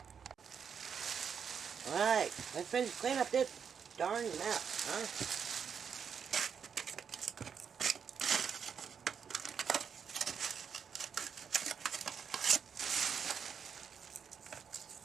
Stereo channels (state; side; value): quieter; left; 7.0 dB